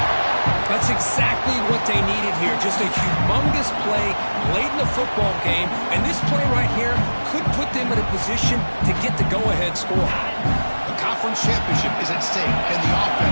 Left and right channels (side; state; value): both; inverted; correlation -1.00